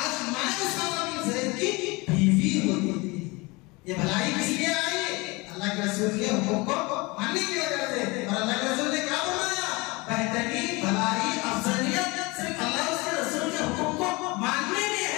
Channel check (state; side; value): quieter; right; 25.0 dB